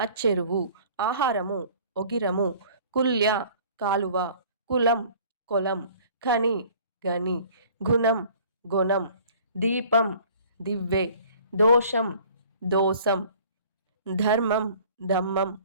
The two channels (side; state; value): both; inverted; correlation -0.51